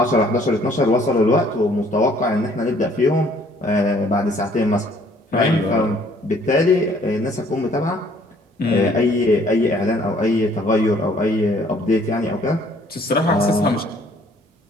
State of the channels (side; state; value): both; normal; correlation 0.60